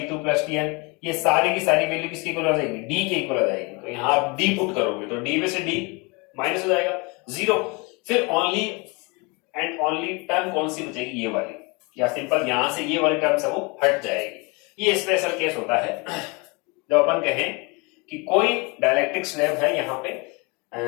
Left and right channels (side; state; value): right; quieter; 28.8 dB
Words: plus Tn ये सारी की सारी वैल्यू किसके इक्वल आ जाएगी, D के इक्वल आ जाएगी। तो यहां आप D पुट करोगे तो D में से D माइनस हो जाएगा 0। फिर ओनली एंड ओनली टर्म कौन सी बचेगी, ये वाली, या सिंपल यहां से ये वाली टर्म से वो हट जाएगी। ये स्पेशल केस होता है जब अपन कहें कि कोई डाइलेक्ट्रिक स्लैब है यहाँ पे